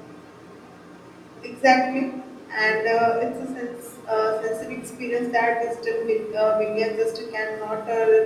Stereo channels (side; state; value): both; identical; correlation 1.00